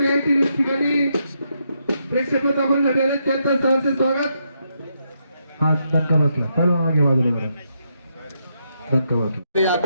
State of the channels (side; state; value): both; inverted; correlation -0.80